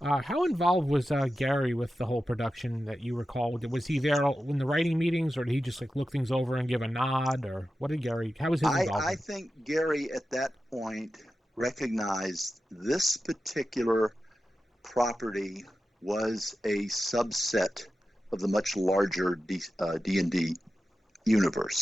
How involved was Gary with the whole production that you recall? Was he there in the writing meetings, or did he just look things over and give a nod, or what did Gary? How was his involvement? I think Gary at that point recognized this particular property was a subset of the much larger D&D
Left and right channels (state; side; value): normal; both; correlation 0.92